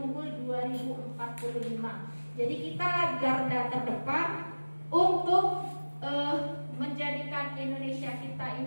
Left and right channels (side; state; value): both; inverted; correlation -1.00